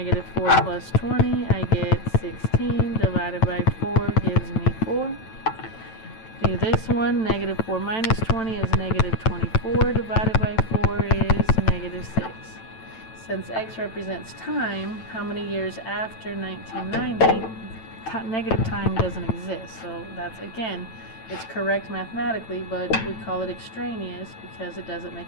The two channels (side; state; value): right; late; 9.0 ms